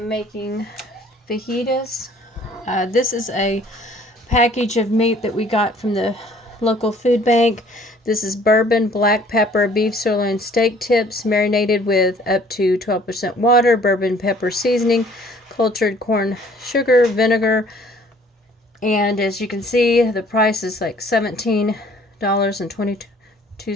making fajitas. This is a package of meat that we got from the local food bank. This is bourbon, black pepper, beef sirloin steak tips marinated with up to 12% water, bourbon pepper seasoning, cultured corn sugar, vinegar, and as you can see, the price is like $17.22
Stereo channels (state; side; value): normal; both; correlation 0.56